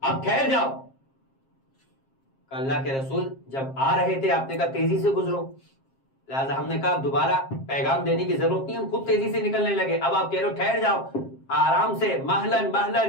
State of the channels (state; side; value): late; right; 7.5 ms